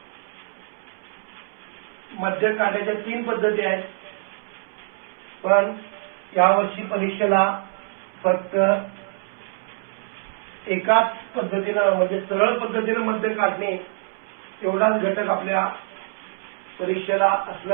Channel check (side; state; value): left; silent; 62 dB below the other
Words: मध्यक काढण्याच्या 3 पद्धती आहेत, पण यावर्षी परीक्षेला फक्त एकाच पद्धतीनं म्हणजे सरळ पद्धतीनं मध्य काढणे एवढाच घटक आपल्या परीक्षेला